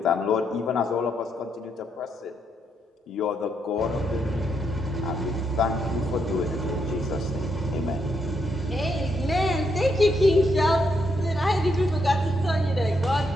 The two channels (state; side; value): normal; both; correlation 0.78